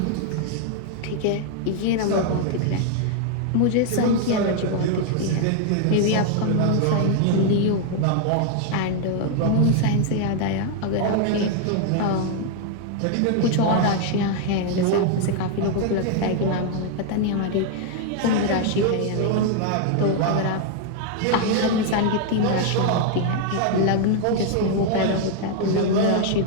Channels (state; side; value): different; both; correlation 0.00